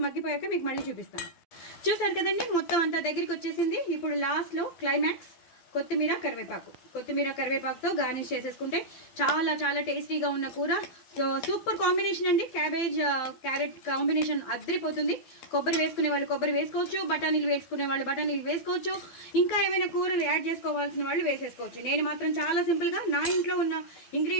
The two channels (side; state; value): right; late; 12 ms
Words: మగ్గిపోయాక మీకు మళ్ళీ చూపిస్తాను. చూసారు కదండి, మొత్తం అంతా దగ్గరికి వచ్చేసింది. ఇప్పుడు లాస్ట్లో క్లైమాక్స్ కొత్తిమీర కరివేపాకుతో గార్నిష్ చేసేసుకుంటే చాలా చాలా టేస్టీగా ఉన్న కూర. సో సూపర్ కాంబినేషన్ అండి. క్యారెట్ కాంబినేషన్ అద్దరిపోతుంది. కొబ్బరి వేసుకునే వాళ్ళు కొబ్బరి వేసుకోవచ్చు, బఠానీలు వేసుకునే వాళ్ళు బఠానీలు వేసుకోవచ్చు, ఇంకా ఏమైనా కూరలు యాడ్ చేసుకోవాల్సిన వాళ్ళు వేసేసుకోవచ్చు. నేను మాత్రం చాలా సింపుల్గా నా ఇంట్లో ఉన్న